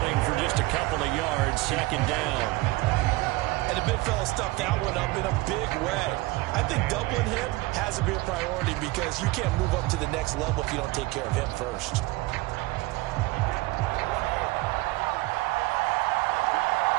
for just a couple of yards. 2nd down. And the big fella stuffed that one up in a big way. I think doubling him has to be a priority because you can't move up to the next level if you don't take care of him first.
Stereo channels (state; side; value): quieter; left; 21.1 dB